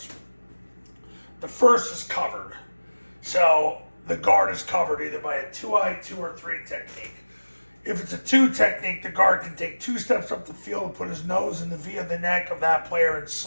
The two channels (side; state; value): both; inverted; correlation -1.00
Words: The first is covered. So the guard is covered either by a 2-eye, 2 or 3 technique. If it's a 2 technique, the guard can take 2 steps up the field and put his nose in the V of the neck of that player and